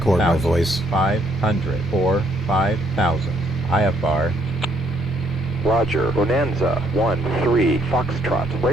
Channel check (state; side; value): normal; both; correlation 0.69